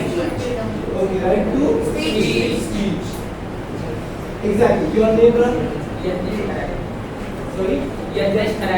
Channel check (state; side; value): identical; both; correlation 1.00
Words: Okay, right to speech. Exactly. Your name, brother? Sorry? Yadnesh.